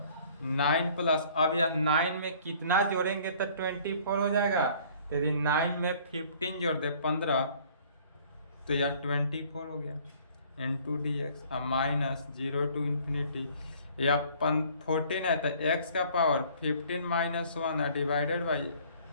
9 प्लस, अब यह 9 में कितना जोड़ेंगे तो 24 हो जाएगा। यदि 9 में 15 जोड़ दे 15 तो यह 24 हो गया इंटू डी एक्स। अब माइनस 0 टू इन्फिनिटी या 14 है तो x का पावर 15 माइनस 1 है डिवाइडेड बाई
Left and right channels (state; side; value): inverted; both; correlation -0.55